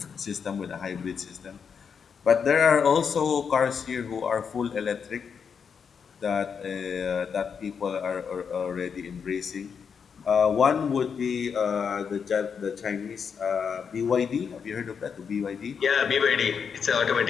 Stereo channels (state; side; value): quieter; right; 6.5 dB